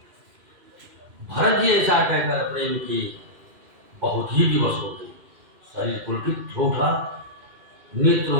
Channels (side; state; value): left; late; 2.5 ms